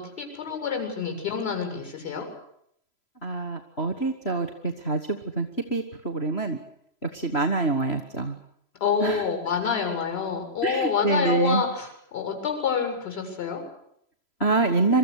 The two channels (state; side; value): late; right; 3.0 ms